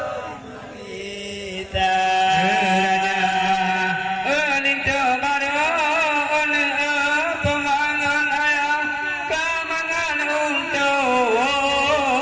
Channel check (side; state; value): both; identical; correlation 1.00